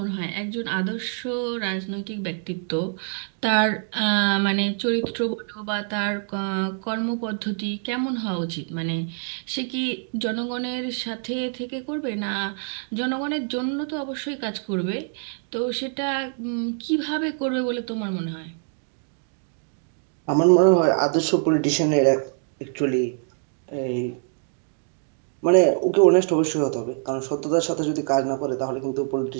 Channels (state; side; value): silent; left; 61 dB below the other